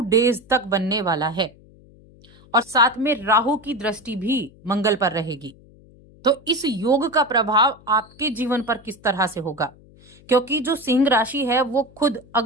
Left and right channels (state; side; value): noise; left; hum, 26 dB below the sound